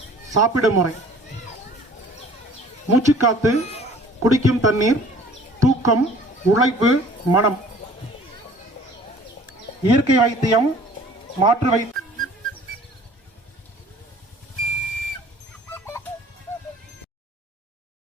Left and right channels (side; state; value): both; normal; correlation 0.51